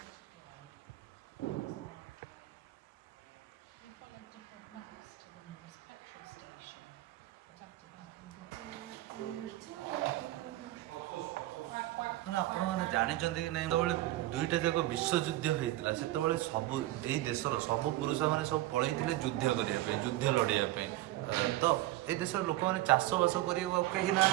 ମାନେ ଆପଣମାନେ ଜାଣିଛନ୍ତି କି ନାହିଁ, ଯେତେବେଳେ ଦୁଇଟା ଯାକ ବିଶ୍ୱଯୁଦ୍ଧ ହେଇଥିଲା ସେତେବେଳେ ସବୁ ଏଇ ଦେଶର ସବୁ ପୁରୁଷମାନେ ସବୁ ପଳେଇଥିଲେ ଯୁଦ୍ଧ କରିବା ପାଇଁ, ଯୁଦ୍ଧ ଲଢ଼ିବା ପାଇଁ। ତ ଏଇ ଦେଶର ଲୋକମାନେ ଚାଷବାସ କରିବାକୁ ଆଉ କେହି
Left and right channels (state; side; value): quieter; left; 16.3 dB